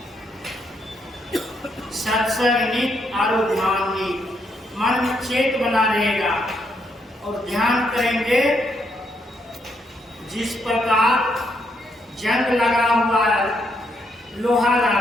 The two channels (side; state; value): both; normal; correlation 0.76